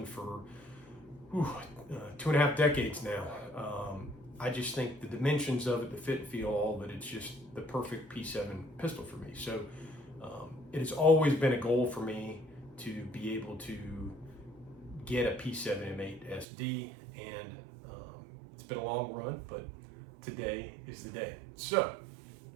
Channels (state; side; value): drops out; left; at 16.4 s